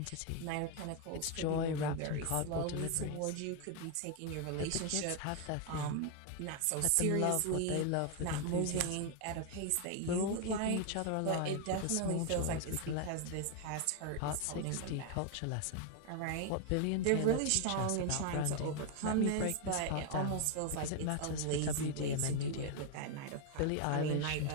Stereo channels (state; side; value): different; both; correlation 0.01